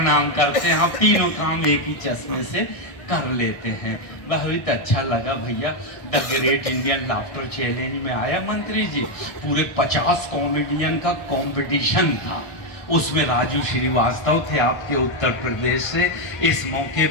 करते हैं, तीनों काम एक ही चश्मे से कर लेते हैं। बहुत अच्छा लगा भैया। The great Indian laughter challenge में आया मंत्री जी, पूरे 50 कॉमेडियन का कंपटीशन था, उसमें राजू श्रीवास्तव थे आपके उत्तर प्रदेश से। इस मौके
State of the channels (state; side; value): late; right; 1.6 ms